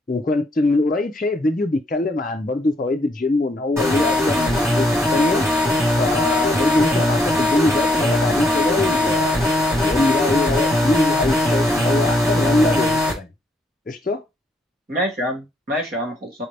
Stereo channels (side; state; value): both; normal; correlation 0.72